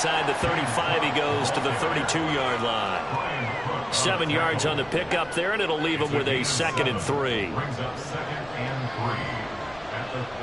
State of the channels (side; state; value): left; noise; rumble, 23 dB below the sound